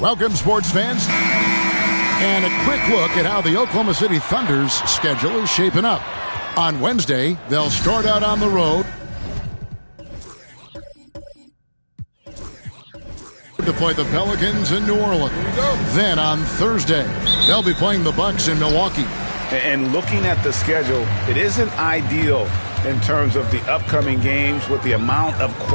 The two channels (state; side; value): inverted; both; correlation -1.00